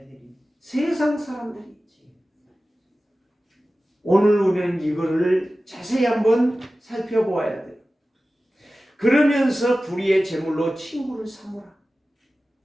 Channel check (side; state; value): both; normal; correlation 0.96